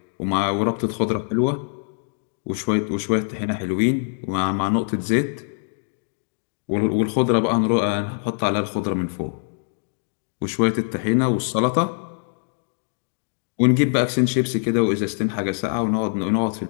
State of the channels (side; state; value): right; silent; 63 dB below the other